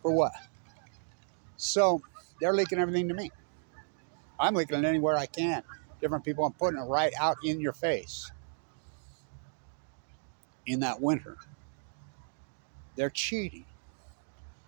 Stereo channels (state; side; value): silent; left; digital silence